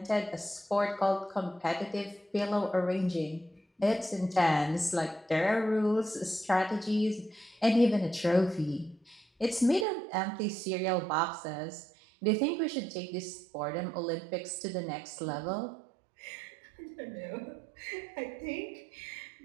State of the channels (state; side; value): drops out; left; at 9.9 s